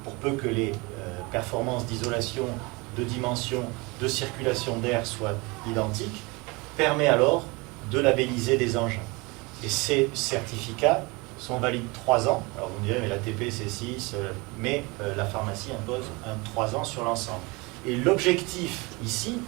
pour peu que les performances d'isolation, de dimension, de circulation d'air soient identiques, permet alors de labelliser des engins. Et ces certificats sont valides 3 ans. Alors vous me direz, mais l'ATP c'est 6, mais la pharmacie impose un 3 ans sur l'ensemble. Et l'objectif ici,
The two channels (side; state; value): left; quieter; 26.1 dB